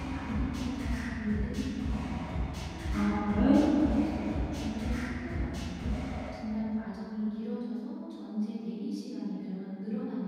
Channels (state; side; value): identical; both; correlation 1.00